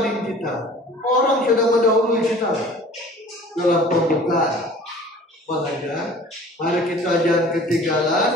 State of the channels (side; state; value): both; normal; correlation 0.47